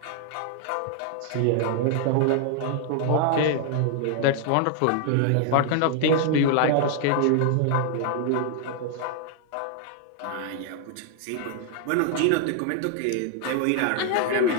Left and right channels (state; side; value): different; both; correlation 0.00